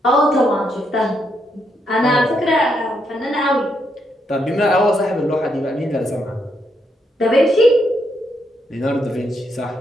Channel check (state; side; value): normal; both; correlation 0.78